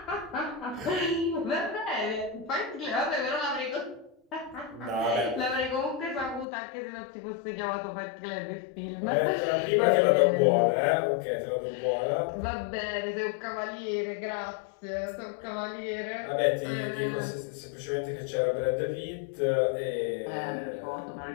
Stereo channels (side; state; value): right; drops out; at 6.5 s